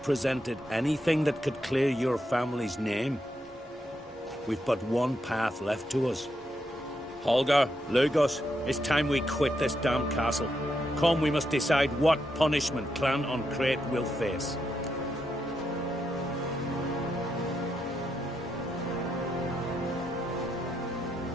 presented anything that could clear your family's name. We've but one path left to us. Holger, Lugos, it's time we quit this damn castle. Come, we must decide what punishment Clan Ancrete will face.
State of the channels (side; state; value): both; normal; correlation 0.82